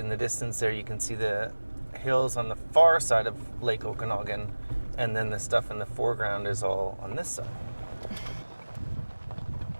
the distance there, you can see the hills on the far side of Lake Okanagan, and then the stuff in the foreground is all on this side.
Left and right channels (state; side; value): inverted; both; correlation -1.00